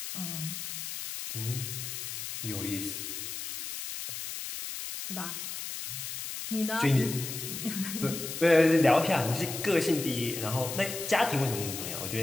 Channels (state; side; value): noise; left; hiss, 6 dB below the sound